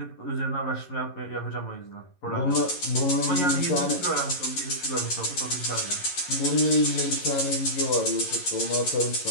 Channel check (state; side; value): late; right; 11 ms